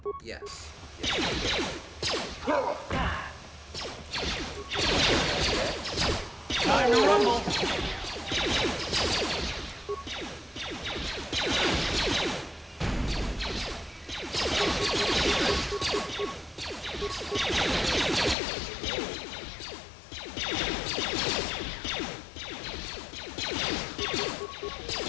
yes. Time to rumble!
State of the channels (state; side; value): drops out; right; at 18.4 s